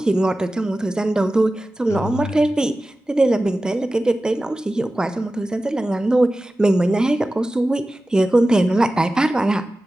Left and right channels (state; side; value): normal; both; correlation 0.95